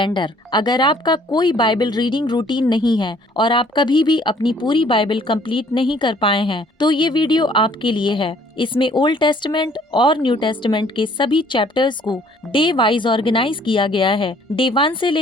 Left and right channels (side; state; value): both; normal; correlation 0.59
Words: अगर आपका कोई बाइबल रीडिंग रूटीन नहीं है और आप कभी भी अपनी पूरी बाइबल कंप्लीट नहीं कर पाए हैं, तो ये वीडियो आपके लिए है। इसमें ओल्ड टेस्टमेंट और न्यू टेस्टमेंट के सभी चैप्टर्स को डे वाइज ऑर्गेनाइज किया गया है। डे 1 से